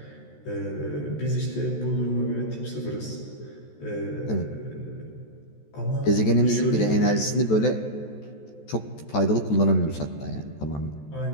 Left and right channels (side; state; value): right; late; 14 ms